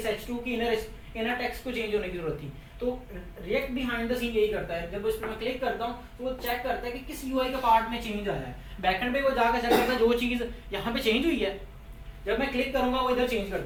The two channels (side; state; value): both; identical; correlation 1.00